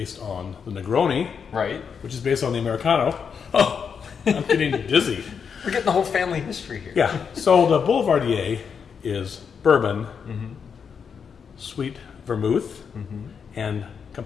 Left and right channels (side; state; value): right; quieter; 6.6 dB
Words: on the Negroni, right? Which is based on the Americano. Oh, I'm getting dizzy. We're getting the whole family history here. Yeah, so the Boulevardier is bourbon, sweet vermouth, and